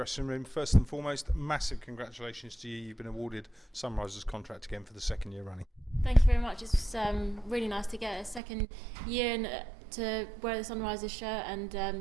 room. First and foremost, massive congratulations to you. You've been awarded Sunrise's contract again for the second year running. Thank you very much. It's really nice to get a second year and to wear the Sunrises shirt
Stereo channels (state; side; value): drops out; left; at 8.4 s